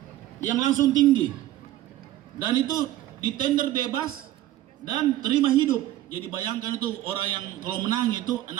yang langsung tinggi, dan itu di tender bebas dan terima hidup. Jadi bayangkan itu orang yang kalau menang itu 6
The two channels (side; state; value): left; quieter; 14.3 dB